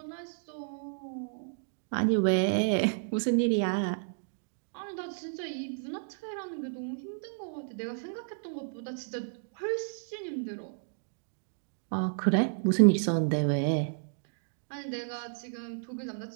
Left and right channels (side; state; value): left; silent; digital silence